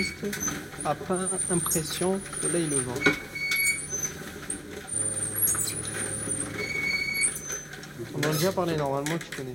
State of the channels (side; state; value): both; identical; correlation 1.00